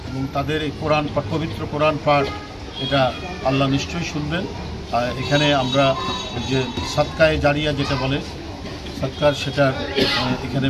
এবং তাদের এই কোরআন পাঠ, পবিত্র কোরআন পাঠ, এটা আল্লাহ নিশ্চয়ই শুনবেন। আর এখানে আমরা যে সাদকায়ে জারিয়া যেটা বলে সৎকার, সেটার এখানে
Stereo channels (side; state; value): both; identical; correlation 1.00